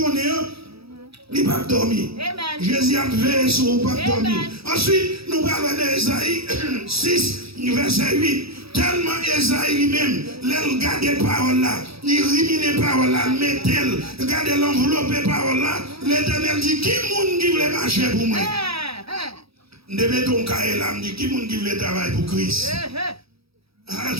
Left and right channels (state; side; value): late; left; 0.77 ms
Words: il ne va pas dormir. Jésus a veillé sur vous, pas dormir. Ensuite, nous parlons d'Ésaïe 6, verset 8. Tellement Esaïe lui-même, il garde les paroles là, il rumine les paroles là, met-elle, garde l'enveloppe des paroles là, l'Éternel dit, qui monde qui veut marcher pour moi? Ne mettons cahier là, me dit, qui monde qui veut travailler pour Christ?